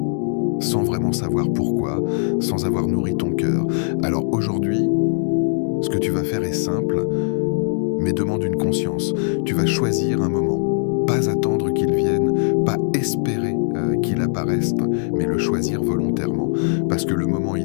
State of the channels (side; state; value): right; silent; digital silence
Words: sans vraiment savoir pourquoi, sans avoir nourri ton cœur. Alors aujourd'hui, ce que tu vas faire est simple, mais demande une conscience. Tu vas choisir un moment, pas attendre qu'il vienne, pas espérer qu'il apparaisse, mais le choisir volontairement. Parce que le moment